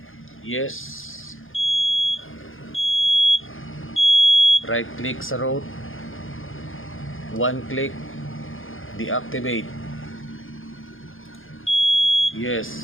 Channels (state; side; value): late; right; 0.59 ms